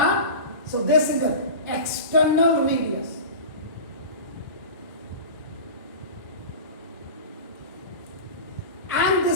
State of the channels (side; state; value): both; inverted; correlation -0.31